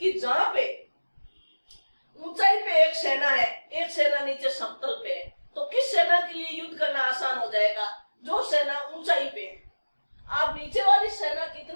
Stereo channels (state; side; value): inverted; both; correlation -1.00